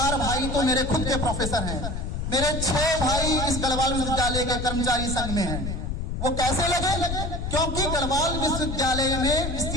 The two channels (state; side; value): noise; left; rumble, 3 dB below the sound